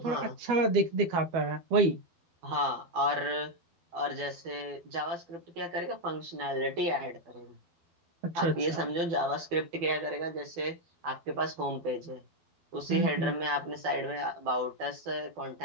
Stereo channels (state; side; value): late; left; 12 ms